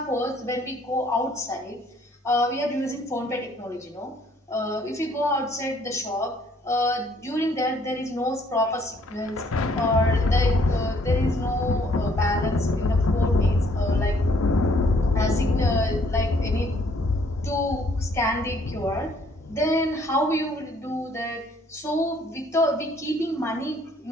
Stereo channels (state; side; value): normal; both; correlation 0.63